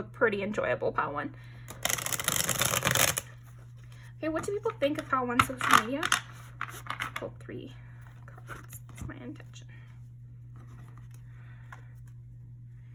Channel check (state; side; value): identical; both; correlation 1.00